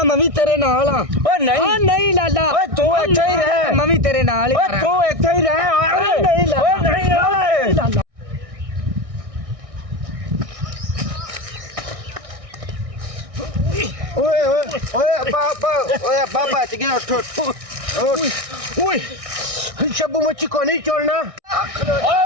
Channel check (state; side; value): late; left; 1.6 ms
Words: ਮੈਂ ਵੀ ਤੇਰੇ ਨਾਲ ਆ। ਓਏ ਨਹੀਂ ਨਹੀਂ ਲਾਲਾ, ਓਏ ਤੂੰ ਇੱਥੇ ਹੀ ਰਹਿ। ਮੈਂ ਵੀ ਤੇਰੇ ਨਾਲ ਹੀ ਓਏ ਤੂੰ ਇੱਥੇ ਹੀ ਰਹਿ। ਓਏ ਨਹੀਂ ਲਾਲਾ, ਓਏ ਨਹੀਂ ਓਏ ਲਾਲਾ। ਓਏ ਓਏ ਓਏ ਅੱਬਾ ਬਚ ਗਿਆ। ਉੱਠ ਓਏ ਸ਼ੱਬੂ ਮੱਛੀ ਕੋ ਨਹੀਂ छोड़ना। ਓਏ